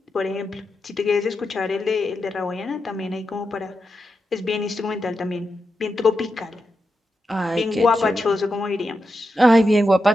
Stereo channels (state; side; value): normal; both; correlation 0.88